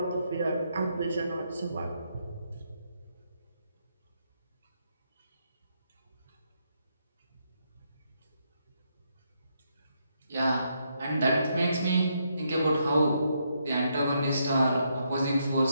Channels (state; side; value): inverted; both; correlation -0.77